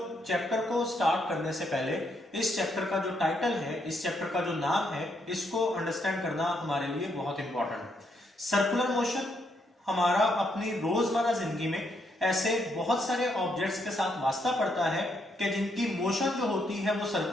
चैप्टर को स्टार्ट करने से पहले इस चैप्टर का जो टाइटल है, इस चैप्टर का जो नाम है, इसको अंडरस्टैंड करना हमारे लिए बहुत इंपॉर्टेंट है। सर्कुलर मोशन हमारा अपनी रोजमर्रा जिंदगी में ऐसे बहुत सारे ऑब्जेक्ट्स के साथ वास्ता पड़ता है कि जिनकी मोशन जो होती है वो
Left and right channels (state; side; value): normal; both; correlation 0.76